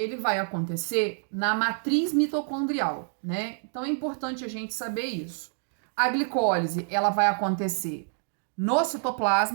vai acontecer na matriz mitocondrial, né? Então, é importante a gente saber isso. A glicólise, ela vai acontecer no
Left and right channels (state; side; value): silent; left; digital silence